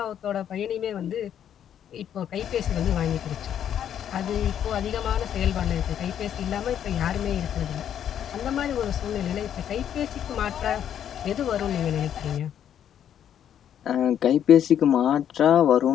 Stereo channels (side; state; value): right; quieter; 9.6 dB